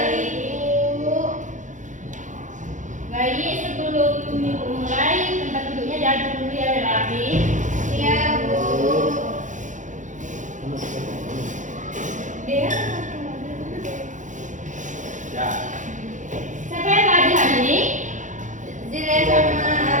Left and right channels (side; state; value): left; late; 0.36 ms